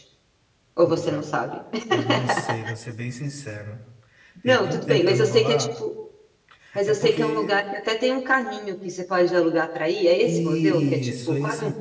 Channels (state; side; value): identical; both; correlation 1.00